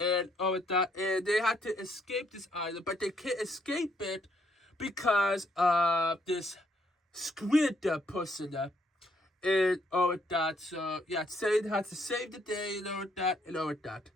all of that, and they had to escape this island, but they can't escape it because of this squid person. And all of that. So yeah, saying how to save the day and all of that and all of that.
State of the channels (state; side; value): normal; both; correlation 0.71